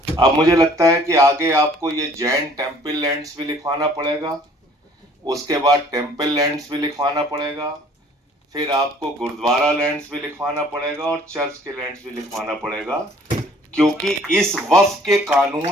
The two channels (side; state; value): both; normal; correlation 0.56